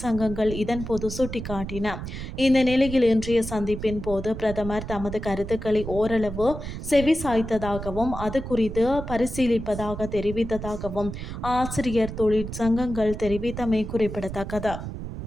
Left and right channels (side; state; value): right; noise; rumble, 8 dB below the sound